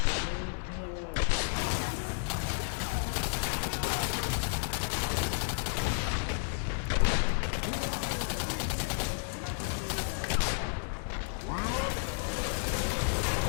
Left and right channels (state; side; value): silent; right; digital silence